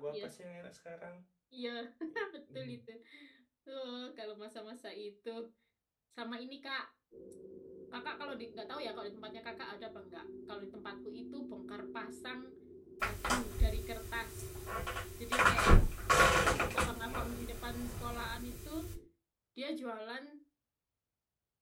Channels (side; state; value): both; identical; correlation 1.00